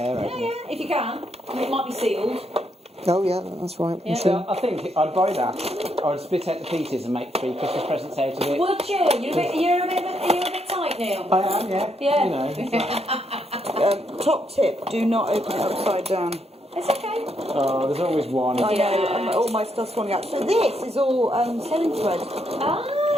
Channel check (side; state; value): both; normal; correlation 0.76